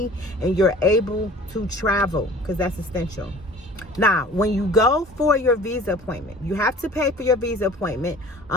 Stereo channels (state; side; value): normal; both; correlation 0.46